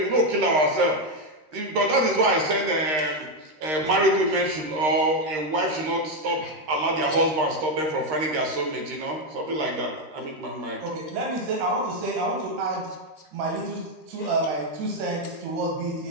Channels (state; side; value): late; left; 13 ms